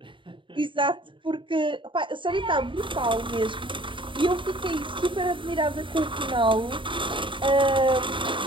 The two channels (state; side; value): late; left; 0.24 ms